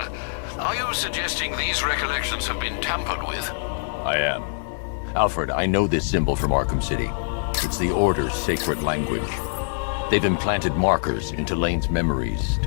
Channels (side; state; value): right; silent; digital silence